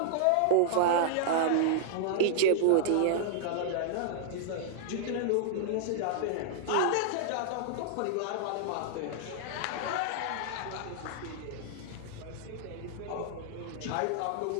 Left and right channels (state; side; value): different; both; correlation -0.01